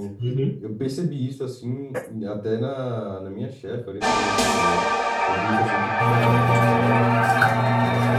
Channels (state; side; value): identical; both; correlation 1.00